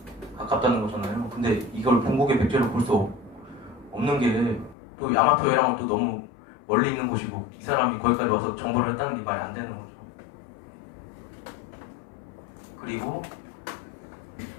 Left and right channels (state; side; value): drops out; right; at 4.8 s